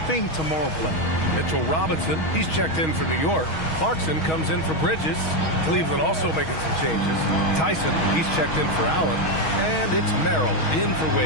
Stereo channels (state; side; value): late; right; 6.3 ms